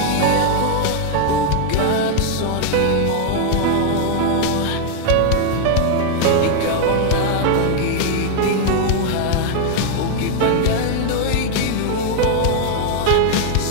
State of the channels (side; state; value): both; different; correlation 0.00